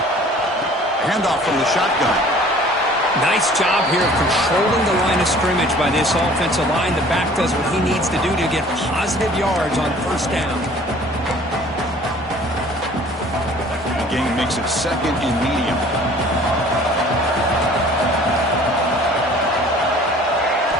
Handoff from the shotgun. Nice job here of controlling the line of scrimmage by this offensive line. The back does what he needs to do to get positive yards on first down. The game makes it 2nd and medium.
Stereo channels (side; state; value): both; normal; correlation 0.51